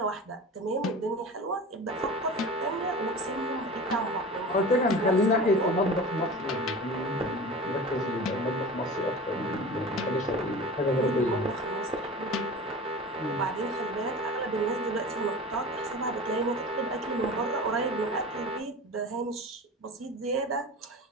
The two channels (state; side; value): normal; both; correlation 0.35